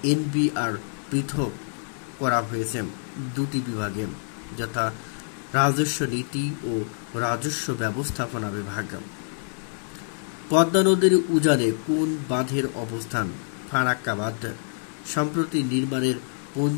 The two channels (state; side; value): silent; right; 61 dB below the other